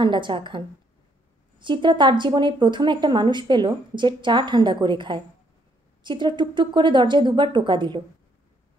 চা খান। চিত্রা তার জীবনে প্রথম একটা মানুষ পেল যে চা ঠান্ডা করে খায়। চিত্রা টুকটুক করে দরজায় 2বার টোকা দিল।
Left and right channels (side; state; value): both; normal; correlation 0.70